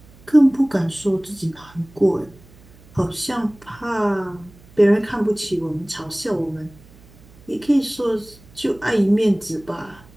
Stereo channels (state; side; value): noise; right; hum, 25 dB below the sound